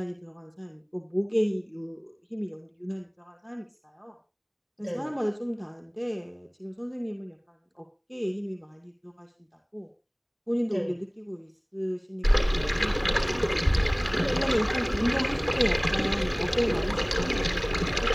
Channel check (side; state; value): both; identical; correlation 1.00